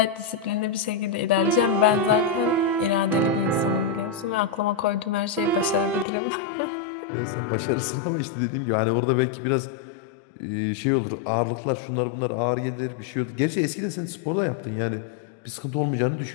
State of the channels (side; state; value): right; drops out; at 6.1 s